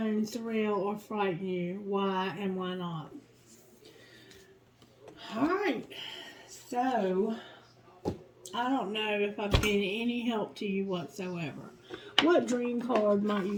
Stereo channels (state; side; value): identical; both; correlation 1.00